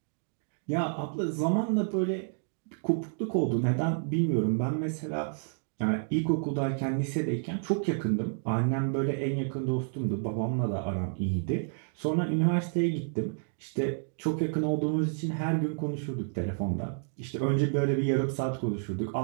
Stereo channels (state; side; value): silent; left; digital silence